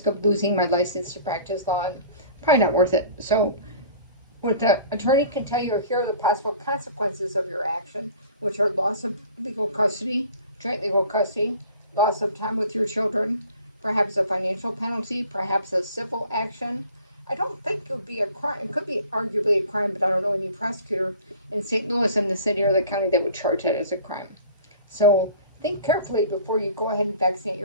of losing my license to practice law and probably not worth it. So what the attorney can tell you are here are the possible consequences of your action, which are loss of legal custody, joint legal custody, loss of time with your children, perhaps a financial penalty, perhaps a civil action. I don't think it would be a crime. It could be arguably a crime, but I don't know any prosecutor in St. Louis and the city or the county that would charge that as a crime. So think carefully before you go ahead and vaccinate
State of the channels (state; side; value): inverted; both; correlation -0.46